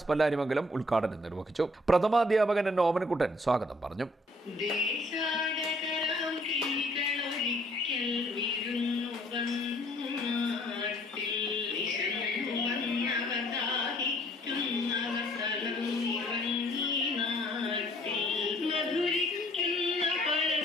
പല്ലാരിമംഗലം ഉദ്ഘാടനം നിർവഹിച്ചു. പ്രഥമാധ്യാപകൻ എൻ ഓമനക്കുട്ടൻ സ്വാഗതം പറഞ്ഞു.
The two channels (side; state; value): both; normal; correlation 0.61